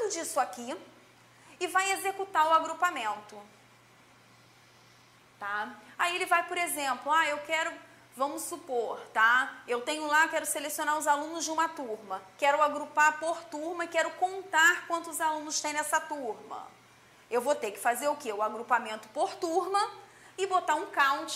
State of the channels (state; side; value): identical; both; correlation 1.00